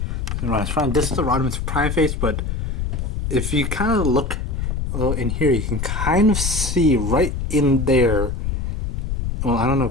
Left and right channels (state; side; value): noise; left; rumble, 2 dB below the sound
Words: is Rodimus Prime. This is the Rodimus Prime face, but if you kind of look a little in here, you can kind of see right in there. Well, I don't know